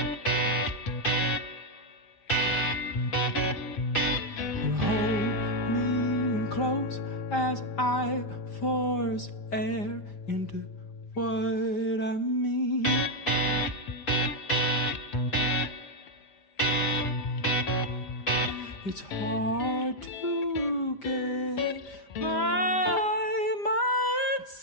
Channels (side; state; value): right; late; 5.1 ms